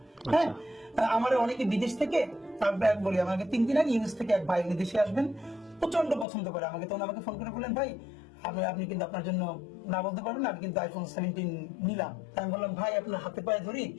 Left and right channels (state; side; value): drops out; right; at 6.2 s